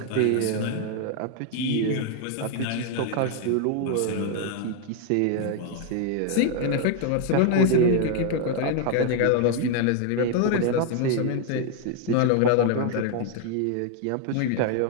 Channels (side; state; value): both; different; correlation 0.00